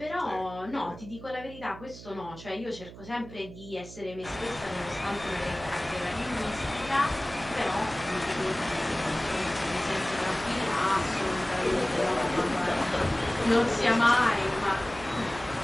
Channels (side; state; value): right; noise; hum, 15 dB below the sound